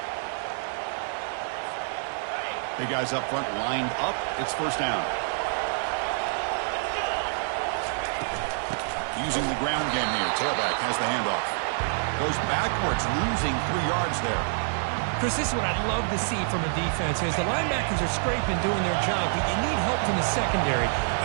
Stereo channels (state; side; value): silent; left; digital silence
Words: Big guys up front lined up. It's first down. Using the ground game here. Tailback has the handoff. Goes backwards, losing 3 yards there. Chris, this is what I'd love to see from a defense is the linebackers are scraping, doing their job, but you need help from the secondary.